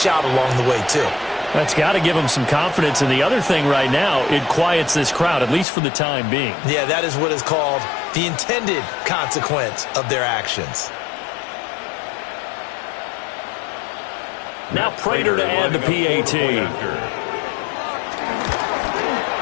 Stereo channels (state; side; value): drops out; right; at 5.7 s